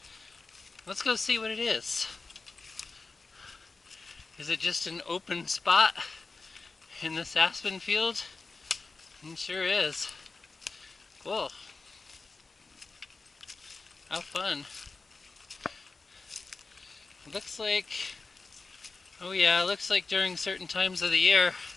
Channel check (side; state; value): right; quieter; 4.0 dB